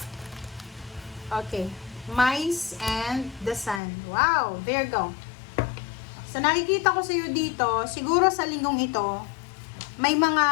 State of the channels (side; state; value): right; drops out; at 3.8 s